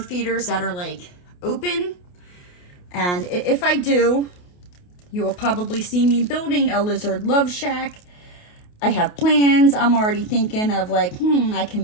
feeders that are, like, open. And if I do, you will probably see me building a lizard love shack. I have plans. I'm already thinking of like, I can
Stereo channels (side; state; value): right; late; 28 ms